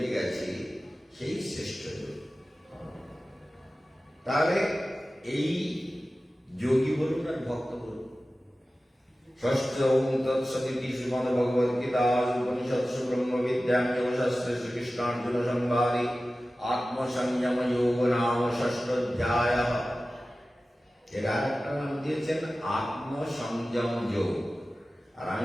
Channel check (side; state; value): both; normal; correlation 0.96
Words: গেছে, সেই শ্রেষ্ঠ যোগী। তাহলে এই যোগী বলুন আর ভক্ত বলুন। ষষ্ঠ তৎসদিতি শ্রীমদ ভগবদ গীতা উপনিষৎসু ব্রহ্মবিদ্যাম যোগশাস্ত্রে শ্রীকৃষ্ণার্জুন সংবাদে আত্মসংযম যোগ নাম ষষ্ঠোধ্যায়। এর আরেকটা নাম দিয়েছেন আত্মসংযম যোগ, আর